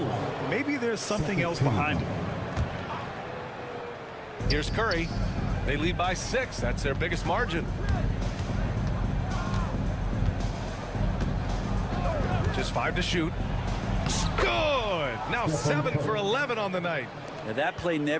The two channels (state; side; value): identical; both; correlation 1.00